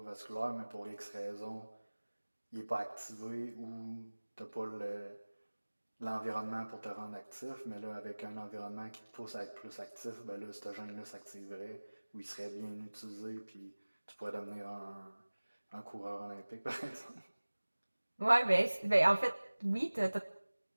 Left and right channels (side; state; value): both; inverted; correlation -1.00